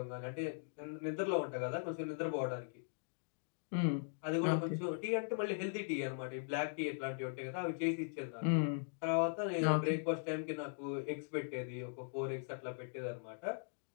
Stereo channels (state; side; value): silent; right; digital silence